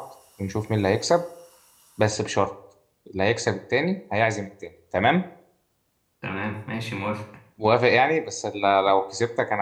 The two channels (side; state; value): both; identical; correlation 1.00